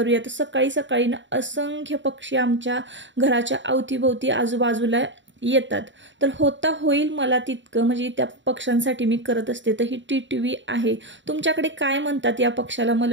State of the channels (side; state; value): left; late; 0.54 ms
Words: तर सकाळी सकाळी ना असंख्य पक्षी आमच्या घराच्या अवतीभोवती आजूबाजूला येतात, तर होता होईल मला तितकं म्हणजे त्या पक्ष्यांसाठी मी करत असते। तर ही टिटवी आहे, तुमच्याकडे काय म्हणतात या पक्षाला